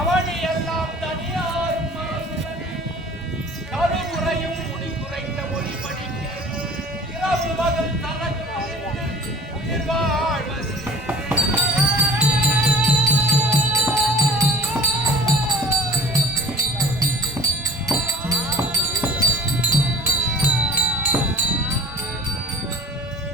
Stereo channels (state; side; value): normal; both; correlation 0.45